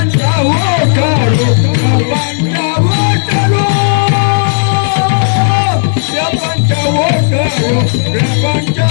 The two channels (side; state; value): right; silent; digital silence